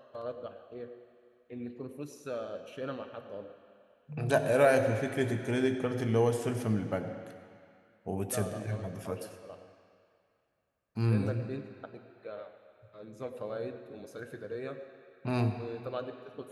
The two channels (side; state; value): both; identical; correlation 1.00